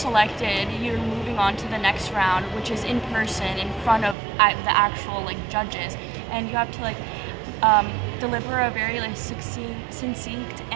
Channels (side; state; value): left; drops out; at 4.2 s